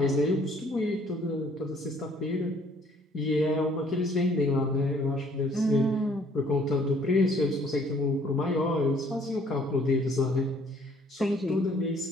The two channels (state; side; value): normal; both; correlation 0.61